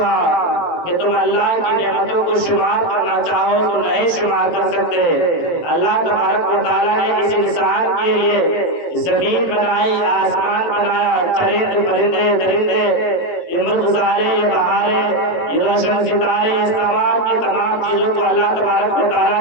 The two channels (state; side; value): late; right; 18 ms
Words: کہ تم اللہ کی نعمتوں کو شمار کرنا چاہو تو نہیں شمار کر سکتے۔ اللہ تبارک و تعالیٰ نے اس انسان کے لیے زمین بنائی، آسمان بنایا، چرند پرندے درندے، یہ مرغزارے، یہ بہاریں، یہ روشن ستارے، اس تمام کی تمام چیزوں کو اللہ تبارک و تعالیٰ